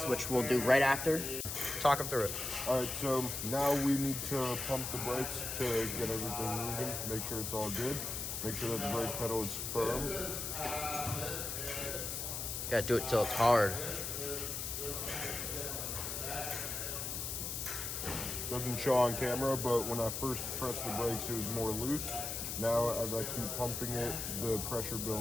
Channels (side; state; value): left; noise; hiss, 4 dB below the sound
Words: which we'll do right after. Talk them through it. Alright, so now we need to pump the brakes to get everything moving, make sure it's all good. Make sure that the brake pedal is firm. Gotta do it till it's hard. Doesn't show on camera, but when I first pressed the brakes, it was more loose. Now, as I keep pumping it, the pressure